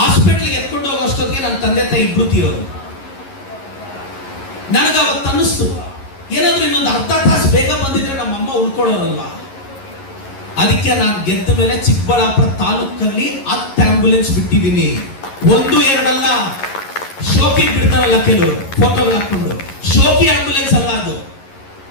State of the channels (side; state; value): right; late; 11 ms